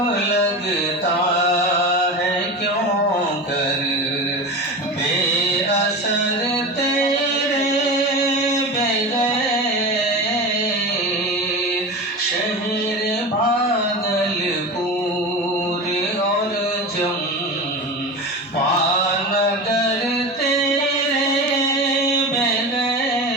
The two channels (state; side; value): normal; both; correlation 0.27